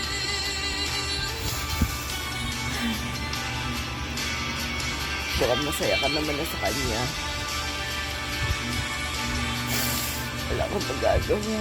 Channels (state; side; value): identical; both; correlation 1.00